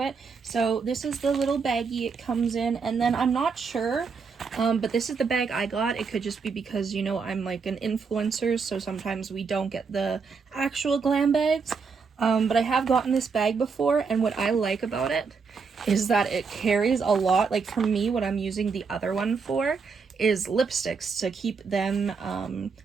it. So this is the little baggie it comes in, and then I'm not sure, but this is the bag I got. It could just be because, you know, I'm like an influencer, so sometimes we don't get the actual glam bags. But I have gotten this bag before, and what I like about it is that it carries a lot. Like for me, what I'm using the other one for is lipsticks to keep them,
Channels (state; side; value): quieter; left; 5.3 dB